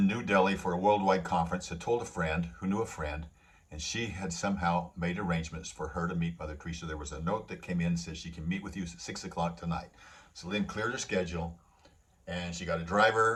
New Delhi for a worldwide conference, had told a friend who knew a friend, and she had somehow made arrangements for her to meet Mother Teresa. There was a note that came in and said she can meet with you at 6 o'clock tonight. So Lynn cleared her schedule, and she got a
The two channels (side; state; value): both; identical; correlation 1.00